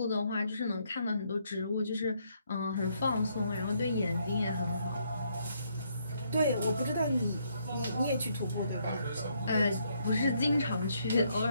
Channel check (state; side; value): inverted; both; correlation -0.72